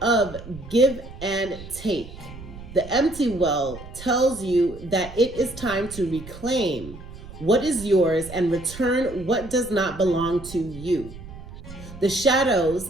of give and take. The empty well tells you that it is time to reclaim what is yours and return what does not belong to you. The shadows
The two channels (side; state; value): right; noise; rumble, 15 dB below the sound